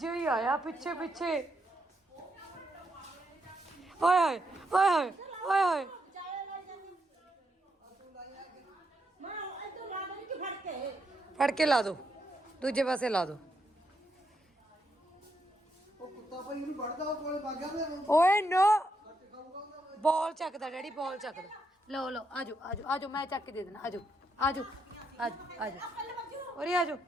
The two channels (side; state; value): both; normal; correlation 0.80